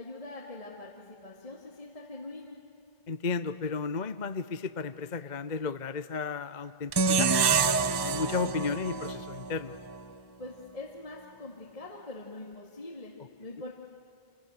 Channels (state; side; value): late; right; 1.1 ms